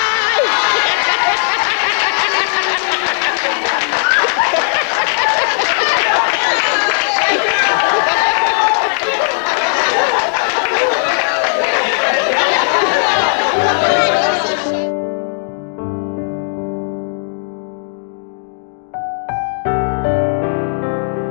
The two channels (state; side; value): silent; right; digital silence